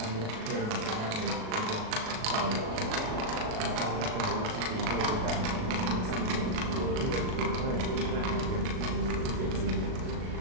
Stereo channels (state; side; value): late; left; 38 ms